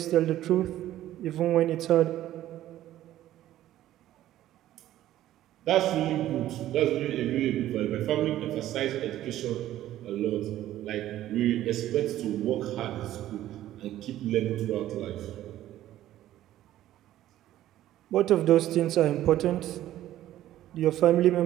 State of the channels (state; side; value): quieter; left; 13.4 dB